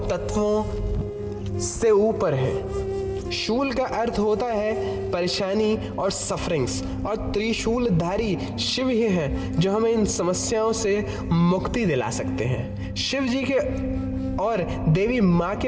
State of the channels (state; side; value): identical; both; correlation 1.00